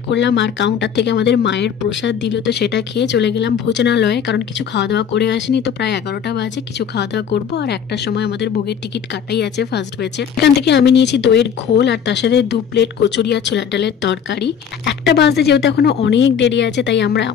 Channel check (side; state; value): right; quieter; 7.7 dB